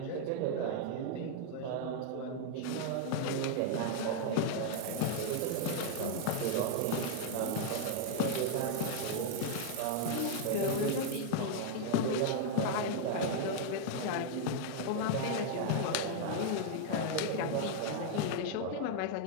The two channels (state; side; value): different; both; correlation 0.00